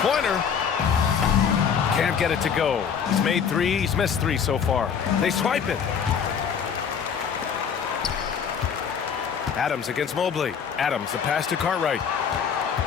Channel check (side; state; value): right; quieter; 7.1 dB